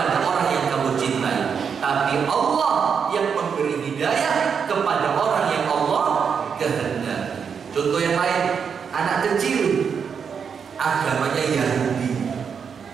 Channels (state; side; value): quieter; left; 6.6 dB